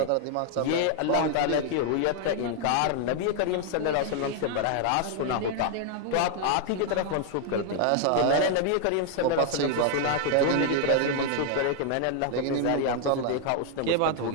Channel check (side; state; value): both; different; correlation 0.00